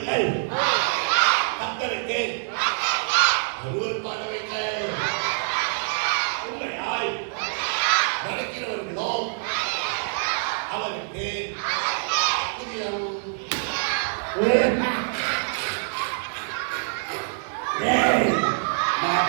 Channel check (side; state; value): left; silent; digital silence